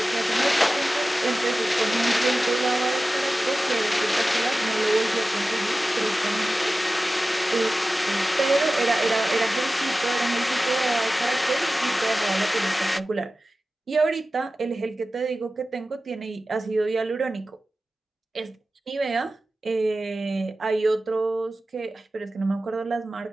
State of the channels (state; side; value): normal; both; correlation 0.95